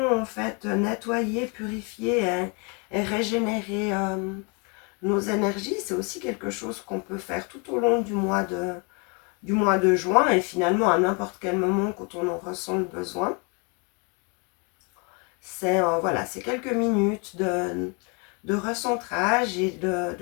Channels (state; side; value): quieter; right; 33.3 dB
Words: en fait nettoyer, purifier et régénérer nos énergies. C'est aussi quelque chose qu'on peut faire tout au long du mois de juin et finalement à n'importe quel moment quand on en ressent le besoin. C'est voilà, c'est quelques minutes de recentrage et